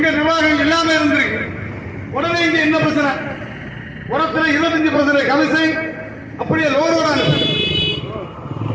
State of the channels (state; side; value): identical; both; correlation 1.00